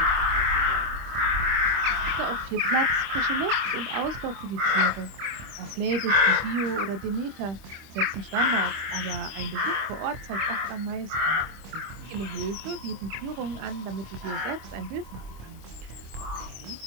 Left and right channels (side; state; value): left; late; 24 ms